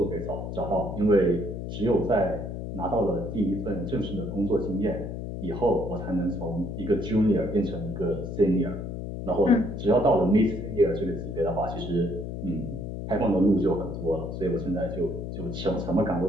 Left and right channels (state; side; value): noise; left; hum, 6 dB below the sound